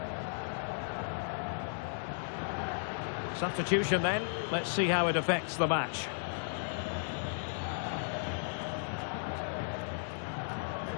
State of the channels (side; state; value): right; silent; 54 dB below the other